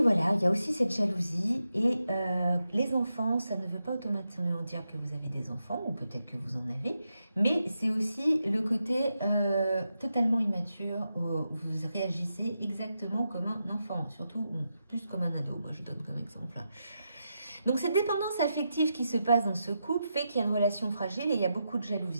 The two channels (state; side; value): inverted; both; correlation -0.86